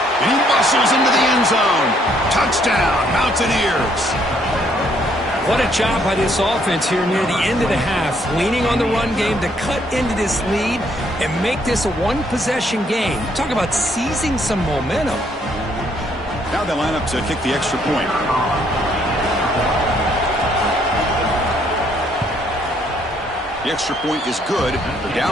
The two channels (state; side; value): normal; both; correlation 0.68